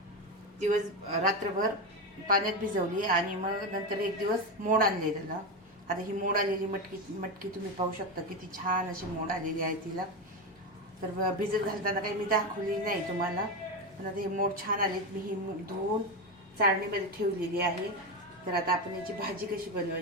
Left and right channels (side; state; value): both; normal; correlation 0.15